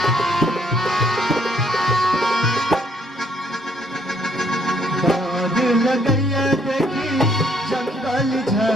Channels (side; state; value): both; normal; correlation 0.67